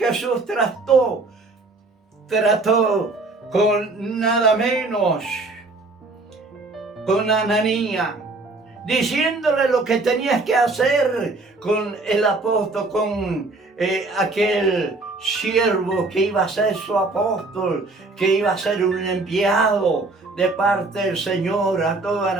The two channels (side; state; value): left; quieter; 3.4 dB